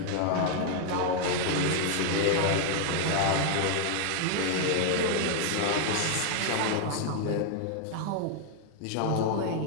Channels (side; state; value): both; different; correlation 0.00